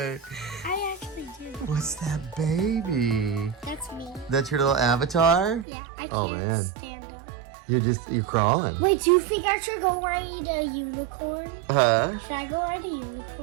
I actually do. What's that baby? That's me. That's your little avatar? Yeah, I can't Oh, man. stand up. You're crawling. Wait, do you think I should go ride a unicorn? Huh? Should I go ride a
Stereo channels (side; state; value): left; drops out; at 5.7 s